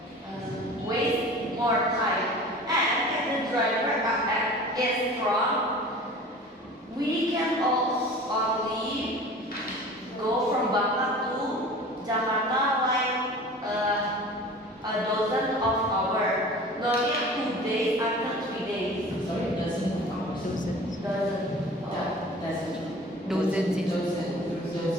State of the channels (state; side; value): normal; both; correlation 0.41